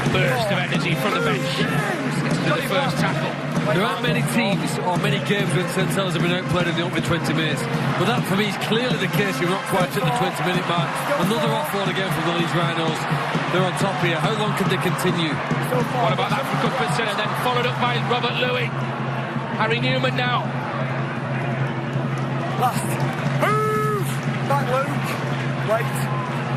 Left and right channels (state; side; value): identical; both; correlation 1.00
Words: Burst of energy from the bench. Gets to the first tackle. There aren't many teams or many games when St Helens have been outplayed in the opening 20 minutes. But that, for me, is clearly the case. You're not quite at the 20-minute mark. Another offload again from the Leeds Rhinos. They're on top here. How long can they continue? What about that from Gudbranson? And then followed up by Robert Louis. Harry Newman now. Last. Move! Back, Luke. Wait.